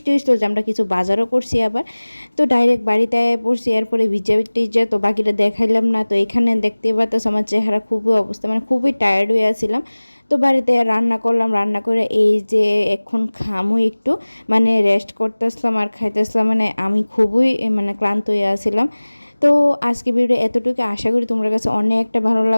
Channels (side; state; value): both; inverted; correlation -1.00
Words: হয়েছিল যে আমরা কিছু বাজারও করছি আবার। তো ডাইরেক্ট বাড়িতে পড়ছি, এরপরে ভিজা টিজা, তো বাকিটা দেখাইলাম না। তো এখানে দেখতে পাচ্ছ আমার চেহারা খুবই অবস্থা, মানে খুবই টায়ার্ড হয়ে আসছিলাম। তো বাড়িতে রান্না করলাম, রান্না করে এই যে এখন খামু একটু, মানে রেস্ট করতেছিলাম আর খাইতেছিলাম। মানে আমি খুবই মানে ক্লান্ত হয়ে আসছিলাম। তো আজকে ভিডিও এতটুকু, আশা করি তোমার কাছে অনেকটা ভালো